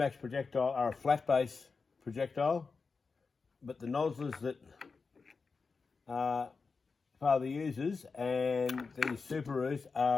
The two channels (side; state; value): right; quieter; 4.7 dB